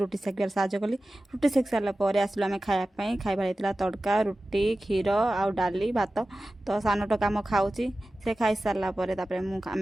सेकिबार साहय कली रुटी सेक सारापर आसलु आम खायापाई खाइबार तड़का रुटी क्षीर आउ डाली भात तो सान टका आम खाऊँगी से खाई सारापर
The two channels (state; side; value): normal; both; correlation 0.95